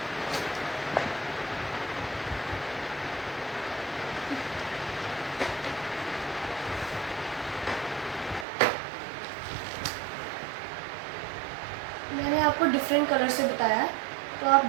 मैंने आपको डिफरेंट कलर से बताया है तो आप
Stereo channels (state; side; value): drops out; left; at 8.5 s